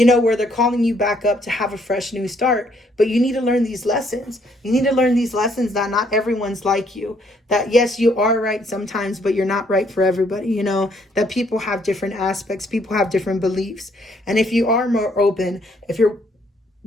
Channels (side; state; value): both; normal; correlation 0.68